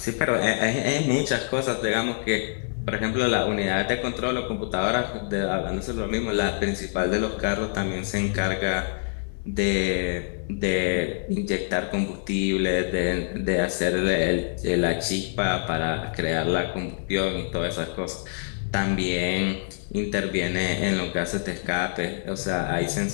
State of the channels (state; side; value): silent; right; 61 dB below the other